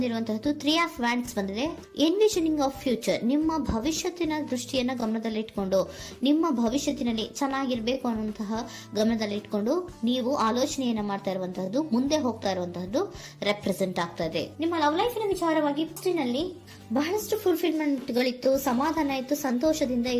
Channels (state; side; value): identical; both; correlation 1.00